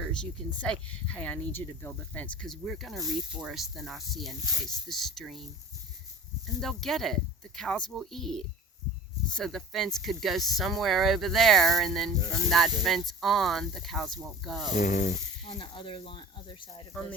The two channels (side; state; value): both; normal; correlation 0.39